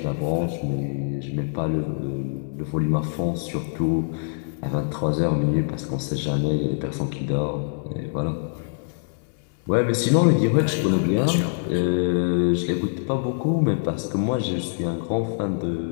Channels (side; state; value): right; silent; 61 dB below the other